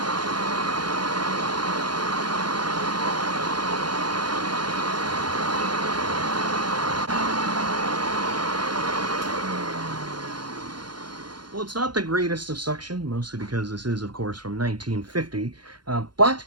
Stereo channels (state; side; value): late; left; 0.71 ms